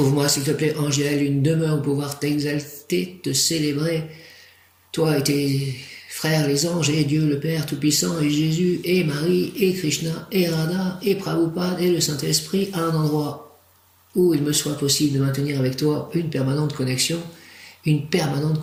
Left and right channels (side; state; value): both; identical; correlation 1.00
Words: s'il te plaît, ange Yaël, une demeure où pouvoir t'exalter, te célébrer, toi et tes frères les anges, et Dieu le Père Tout-Puissant, et Jésus, et Marie, et Krishna, et Radha, et Prabhupada, et le Saint-Esprit, à un endroit où il me soit possible de maintenir avec toi une permanente connexion